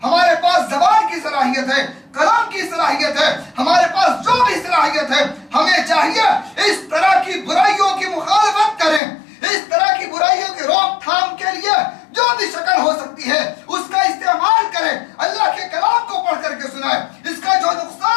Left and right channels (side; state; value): right; drops out; at 9.0 s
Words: ہمارے پاس زبان کی صلاحیت ہے، کلام کی صلاحیت ہے، ہمارے پاس جو بھی صلاحیت ہے، ہمیں چاہیے اس طرح کی برائیوں کی مخالفت کریں، اس طرح کی برائیوں کی روک تھام کے لیے جو بھی شکل ہو سکتی ہے اس کا استعمال کریں، اللہ کے کلام کو پڑھ کر کے سنائیں، اس کا جو